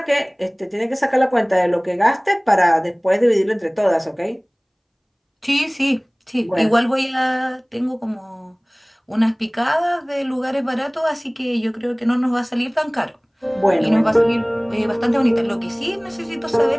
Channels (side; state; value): both; identical; correlation 1.00